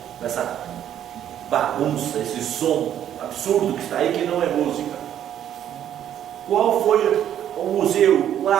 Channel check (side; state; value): left; quieter; 10.4 dB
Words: Essa bagunça, esse som absurdo que está aí, que não é música. Qual foi o museu, o